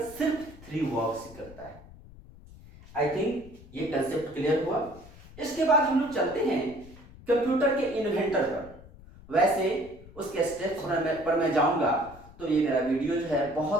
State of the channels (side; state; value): left; noise; rumble, 20 dB below the sound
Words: सिर्फ 3 वर्क्स करता है। आई थिंक ये कंसेप्ट क्लियर हुआ। इसके बाद हम लोग चलते हैं कंप्यूटर के इन्वेंटर पर। वैसे उसके स्टेप्स पर मैं जाऊंगा तो ये मेरा वीडियो जो है